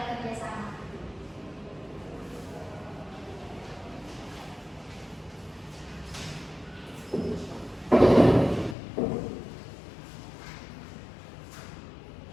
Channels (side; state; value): right; drops out; at 8.8 s